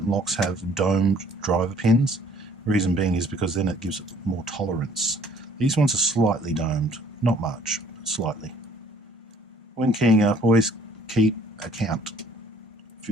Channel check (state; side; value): normal; both; correlation 0.58